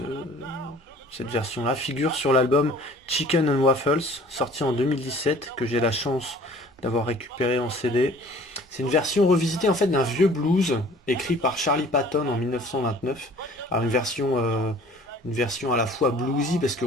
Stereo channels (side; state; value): both; normal; correlation 0.50